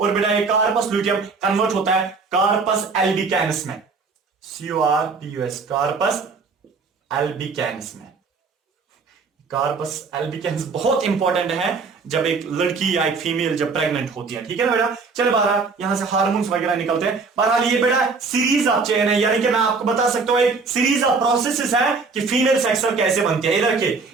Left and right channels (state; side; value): quieter; left; 4.5 dB